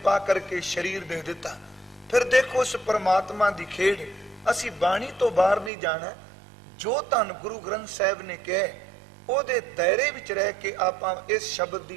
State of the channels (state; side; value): drops out; left; at 5.7 s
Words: ਕਰਕੇ ਸਰੀਰ ਦੇ ਦਿੱਤਾ। ਫਿਰ ਦੇਖੋ ਉਸ ਪਰਮਾਤਮਾ ਦੀ ਖੇਡ। ਅਸੀਂ ਬਾਣੀ ਤੋਂ ਬਾਹਰ ਨਹੀਂ ਜਾਣਾ। ਜੋ ਧੰਨ ਗੁਰੂ ਗ੍ਰੰਥ ਸਾਹਿਬ ਨੇ ਕਿਹਾ ਉਹਦੇ ਦਾਇਰੇ ਵਿੱਚ ਰਹਿ ਕੇ ਆਪਾਂ ਇਸ ਸ਼ਬਦ ਦੀ